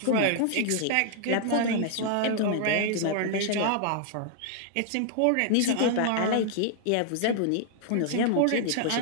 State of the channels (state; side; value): different; both; correlation -0.01